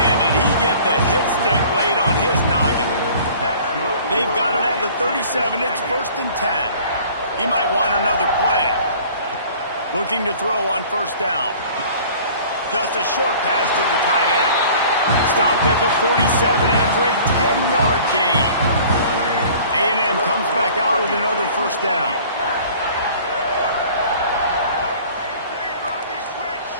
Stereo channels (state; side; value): inverted; both; correlation -0.48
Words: did he get the hit stick laid on his noggin. They've got it at the 37. It's 1st and 10. He might want another play. Looking to throw on first down. Just a short pass to the tight end. Stopped at the 47 after a 10-yard gain. A&M comes back out with another first down.